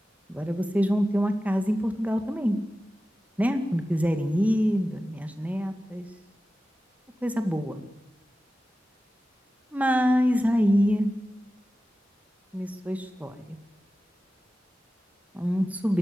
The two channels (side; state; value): both; normal; correlation 0.95